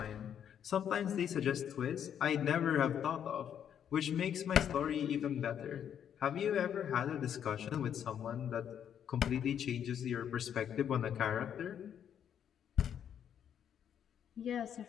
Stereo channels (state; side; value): quieter; right; 9.0 dB